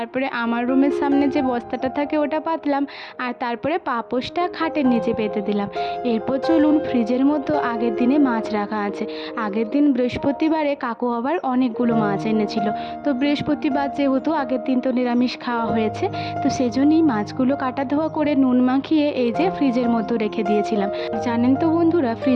আমার রুমের সামনে যে বস্তাটা থাকে ওটা পাতলাম, আর তারপরে পাপোশটা খাটের নিচে পেতে দিলাম। এরপর চলুন, ফ্রিজের মধ্যে আগের দিনে মাছ রাখা আছে। আগের দিন বৃহস্পতিবারে কাকু আবার অনেকগুলো মাছ এনেছিল, তো বৃহস্পতিবার যেহেতু আগের দিন তো নিরামিষ খাওয়া হয়েছে, তো সেজন্যই মাছগুলো কাটা ধোয়া করে নুন মাখিয়ে এই যে ফ্রিজের মধ্যে রেখে দিয়েছিলাম। জানেন তো বন্ধুরা,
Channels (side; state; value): both; identical; correlation 1.00